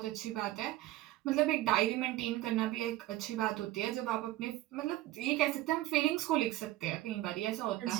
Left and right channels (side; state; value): left; quieter; 16.1 dB